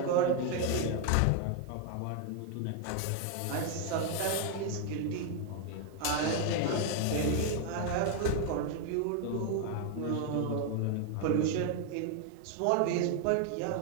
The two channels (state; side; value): different; both; correlation 0.00